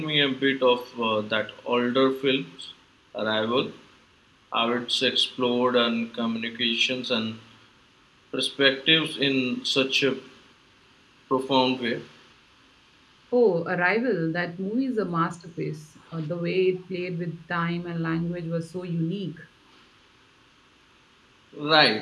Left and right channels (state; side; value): identical; both; correlation 1.00